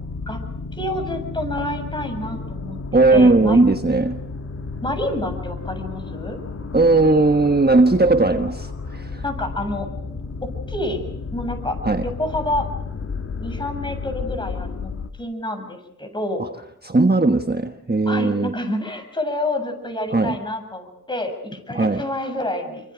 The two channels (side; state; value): both; normal; correlation 0.54